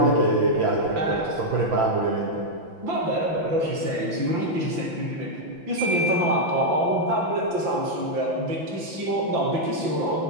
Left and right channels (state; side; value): late; left; 6.0 ms